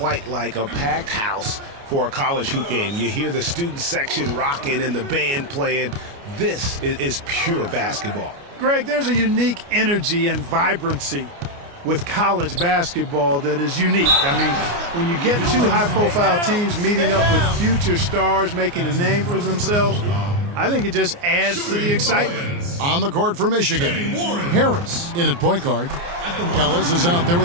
like a packed house for a college hoop game. You hear the student section rocking and the band playing. This is pure basketball. Greg, there's a unique energy and vibrancy with college basketball that is unique. I mean, when you get two high-profile teams meeting up with future stars making a name for themselves, I think it just adds to the excitement. On the court for Michigan, Harris in at point guard. Ellis is out there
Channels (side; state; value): left; late; 29 ms